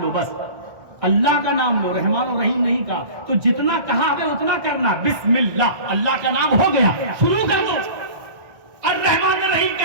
لو, بس اللہ کا نام لو, رحمان الرحیم نہیں کہا. تو جتنا کہا ہمیں اتنا کرنا. بسم اللہ, اللہ کا نام ہو گیا, شروع کر دو. الرحمن الرحیم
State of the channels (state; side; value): late; left; 1.6 ms